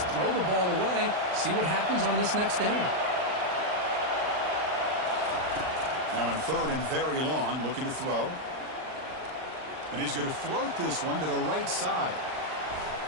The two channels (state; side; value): late; left; 39 ms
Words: throw the ball away. See what happens on this next down. Now in 3rd and very long, looking to throw. And he's going to float this one to the right side.